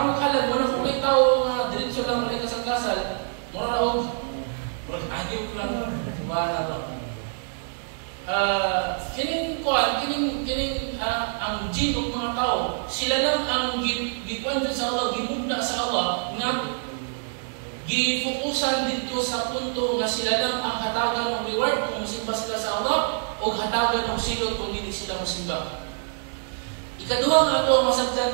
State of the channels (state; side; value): silent; left; 61 dB below the other